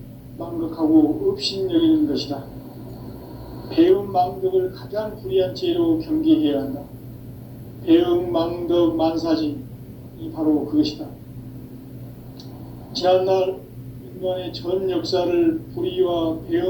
망극하고 업신여기는 것이다. 배음 망덕을 가장 불의한 죄로 경계해야 한다. 배음 망덕 만사진, 이 바로 그것이다. 지난날 인간의 전 역사를 불의와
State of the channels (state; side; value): identical; both; correlation 1.00